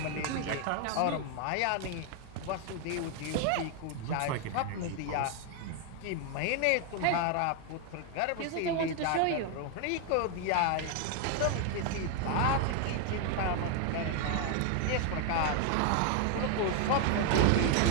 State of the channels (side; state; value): both; different; correlation 0.01